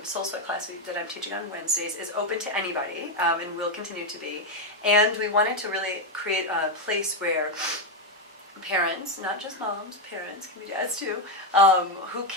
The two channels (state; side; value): normal; both; correlation 0.06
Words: SOULSWEAT class that I'm teaching on Wednesdays is open to anybody and will continue to be. And we wanted to really create a place where parents, not just moms, parents, can be dads too, who